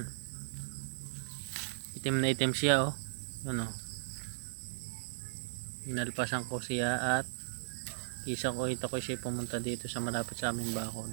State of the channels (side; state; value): left; silent; digital silence